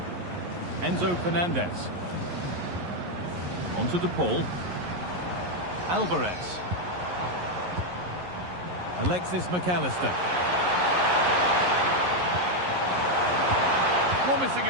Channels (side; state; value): left; late; 11 ms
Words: Enzo Fernandez. Onto de Paul. Alvarez. Alexis McAllister. Promising